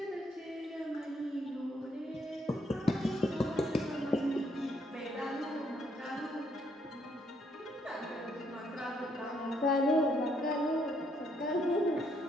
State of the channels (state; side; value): normal; both; correlation 0.72